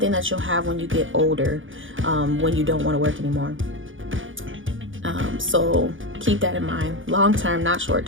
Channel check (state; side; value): late; left; 0.57 ms